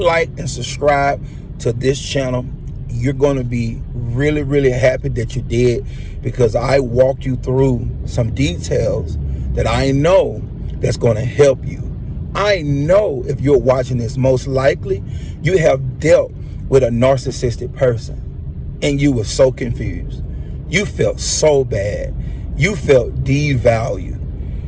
and subscribe to this channel. You're going to be really, really happy that you did, because I walked you through some details that I know that's going to help you. I know if you're watching this, most likely you have dealt with a narcissistic person and you were so confused. You felt so bad. You felt devalued.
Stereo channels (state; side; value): identical; both; correlation 1.00